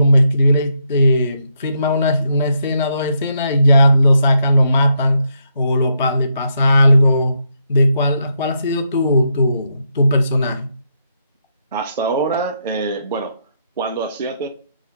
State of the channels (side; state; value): both; inverted; correlation -0.79